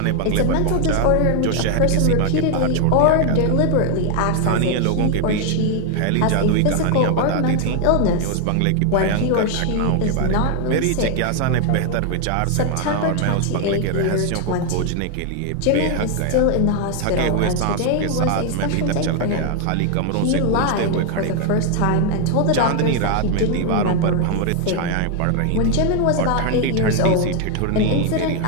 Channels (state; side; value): different; both; correlation 0.00